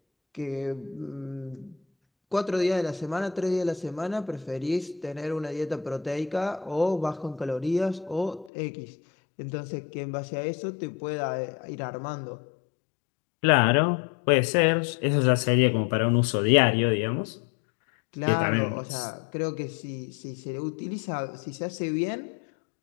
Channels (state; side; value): drops out; right; at 8.5 s